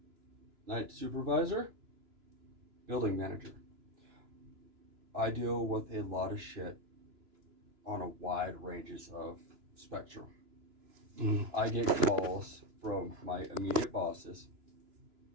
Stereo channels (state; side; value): late; left; 2.9 ms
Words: Night supervisor, building manager. I deal with a lot of shit on a wide ranges of spectrum. I get calls from my immediate bosses